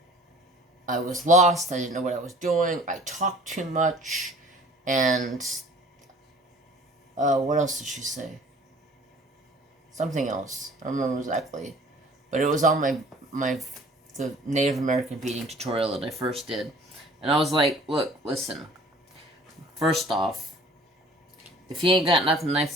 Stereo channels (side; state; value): both; normal; correlation 0.50